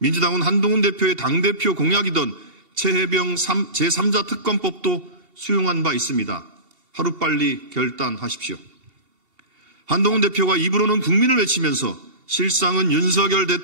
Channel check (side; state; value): left; late; 2.7 ms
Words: 한동훈 대표의 당대표 공약이던 최혜병 제3자 특검법도 수용한 바 있습니다. 하루빨리 결단하십시오. 한동훈 대표가 입으로는 국민을 외치면서 실상은 윤석열